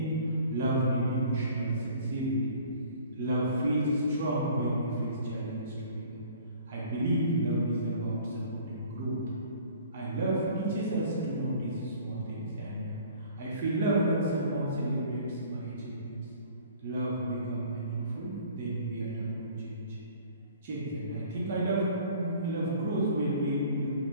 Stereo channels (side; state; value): both; inverted; correlation -0.50